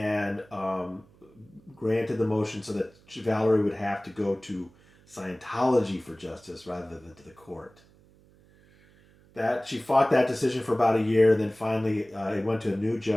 granted the motion so that Valerie would have to go to Scientology for justice rather than to the court. That she fought that decision for about a year, then finally it went to a new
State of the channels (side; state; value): right; noise; hum, 28 dB below the sound